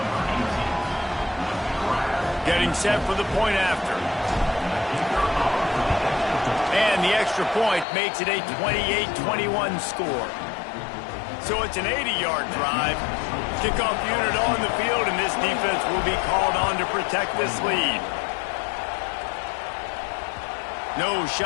Getting set for the point after. And the extra point makes it a 28-21 score. So it's an 80-yard drive. Kickoff unit on the field, and this defense will be called on to protect this lead. No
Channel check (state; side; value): drops out; right; at 7.9 s